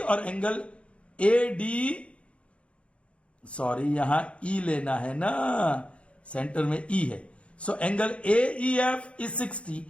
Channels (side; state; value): right; late; 0.061 ms